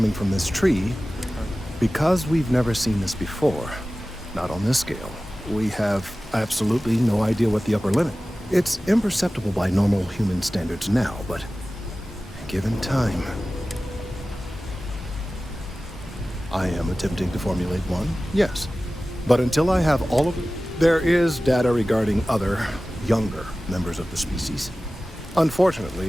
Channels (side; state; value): both; normal; correlation 0.96